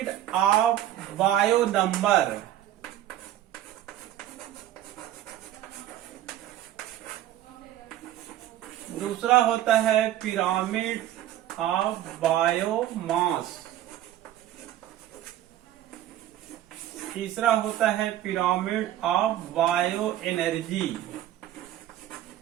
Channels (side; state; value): left; quieter; 12.7 dB